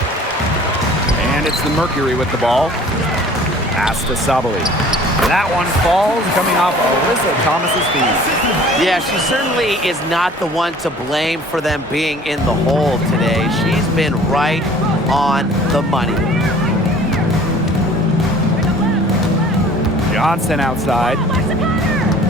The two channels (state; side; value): normal; both; correlation 0.49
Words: And it's the Mercury with the ball. Pass to Sabali. That one falls, coming off Alyssa Thomas's feet. Yeah, she certainly is not the one to blame for them being in the hole today. She's been right on the money. Johnson outside.